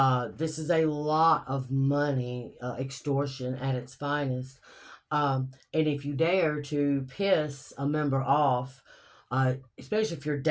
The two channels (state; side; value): identical; both; correlation 1.00